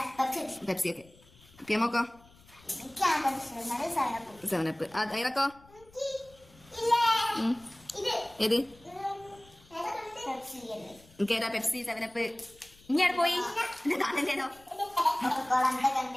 പെപ്സി. ഒക്കെ. പിയമോക്കോ? 7up. ഐറക്കോ? ഏത്? എനിക്കേതാ? Pepsi, 7up. ഇനി പോയി കാണണ്ടേതോ?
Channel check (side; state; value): left; noise; rumble, 26 dB below the sound